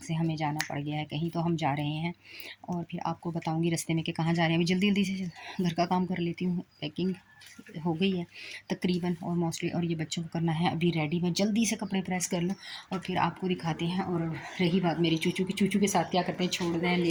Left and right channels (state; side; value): identical; both; correlation 1.00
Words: से हमें जाना पड़ गया है कहीं, तो हम जा रहे हैं और फिर आपको बताऊंगी रास्ते में कि कहाँ जा रहे हैं। अभी जल्दी जल्दी से घर का काम कर लेती हूँ। पैकिंग हो गई है तकरीबन और मोस्टली, और ये बच्चों को करना है अभी रेडी। मैं जल्दी से कपड़े प्रेस कर लूँ और फिर आपको दिखाते हैं। और रही बात मेरी चूचू की, चूचू के साथ क्या करते हैं, छोड़ना है